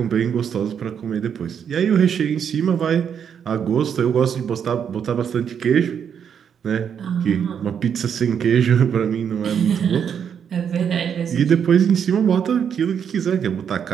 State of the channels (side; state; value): left; quieter; 7.8 dB